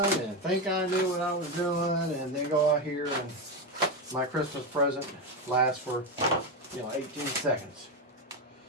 and think I knew what I was doing, and then go out here and my Christmas present lasts for 18 seconds.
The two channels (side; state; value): both; normal; correlation 0.12